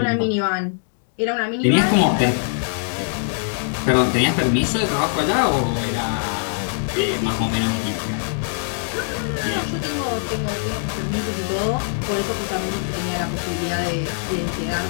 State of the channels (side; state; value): right; silent; digital silence